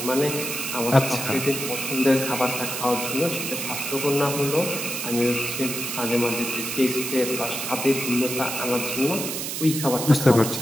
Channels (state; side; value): noise; right; hiss, 4 dB below the sound